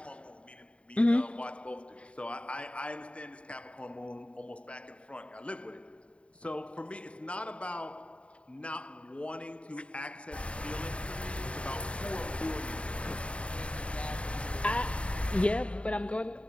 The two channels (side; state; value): right; late; 0.060 ms